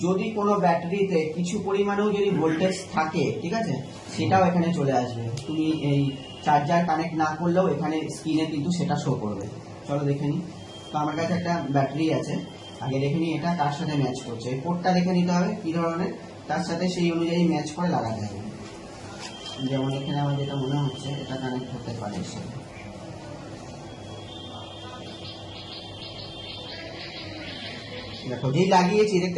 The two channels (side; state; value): both; identical; correlation 1.00